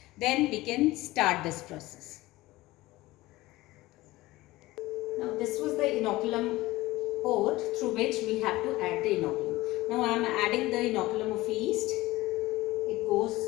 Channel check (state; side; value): quieter; right; 18.6 dB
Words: Then we can start this process. Now this was the inoculum port through which we have to add the inoculum. Now I am adding the inoculum of yeast. It goes